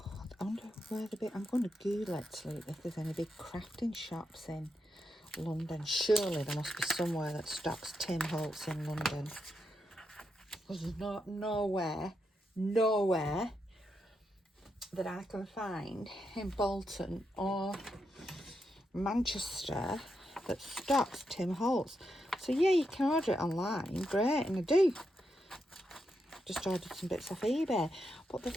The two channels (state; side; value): normal; both; correlation 0.83